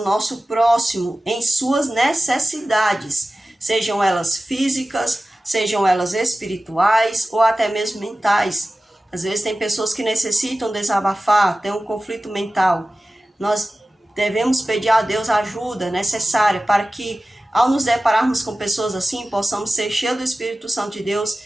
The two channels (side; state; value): both; normal; correlation 0.96